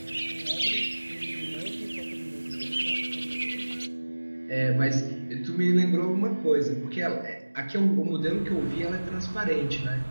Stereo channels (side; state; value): both; inverted; correlation -1.00